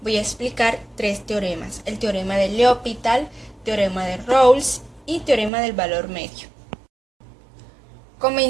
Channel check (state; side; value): drops out; left; at 5.5 s